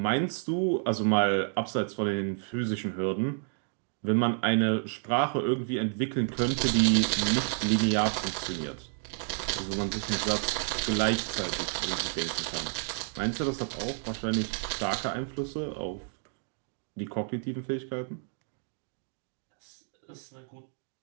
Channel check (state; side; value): silent; left; 58 dB below the other